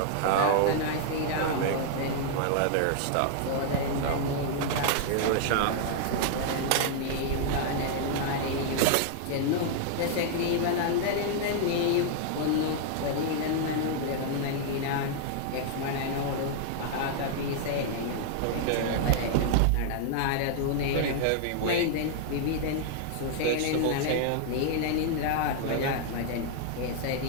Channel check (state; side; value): different; both; correlation -0.01